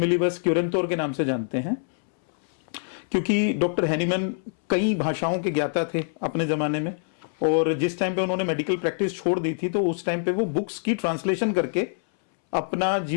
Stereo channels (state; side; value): silent; right; 62 dB below the other